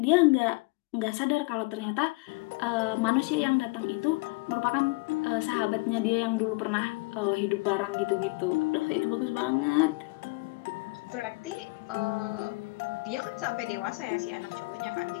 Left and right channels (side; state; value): right; quieter; 26.1 dB